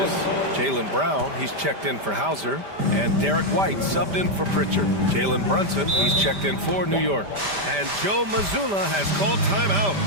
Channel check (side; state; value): left; late; 5.1 ms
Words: Jaylen Brown, he's checked in for Hauser. And Derek White subbed in for Pritchard. Jalen Brunson, he's checked in for New York. And Joe Mazzulla has called timeout.